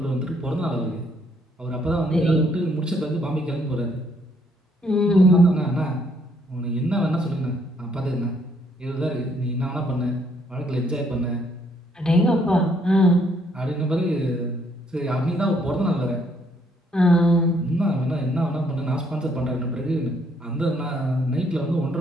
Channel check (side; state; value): both; normal; correlation 0.69